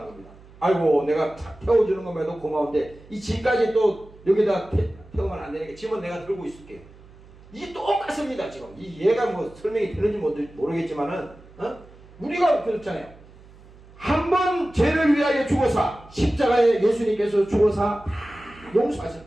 겁니다. 아이고 내가 태워주는 것만도 고마운데 이 짐까지 또 여기다 태우면 안 되니까 짐은 내가 들고 있을게요. 이게 똑같습니다. 지금 이 얘가 뭐 설명이 되는지 모르겠지만은 우리가 그렇잖아요. 한 번 죄를 위하여 죽어서 십자가에 예수님께서 죽어서 다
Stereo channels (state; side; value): noise; right; hum, 23 dB below the sound